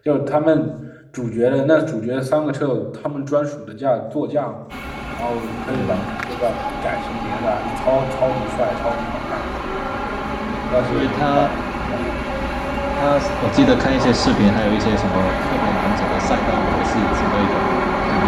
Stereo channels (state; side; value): identical; both; correlation 1.00